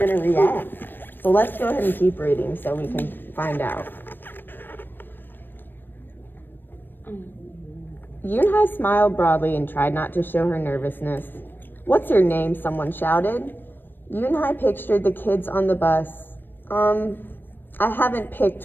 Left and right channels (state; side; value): late; right; 0.094 ms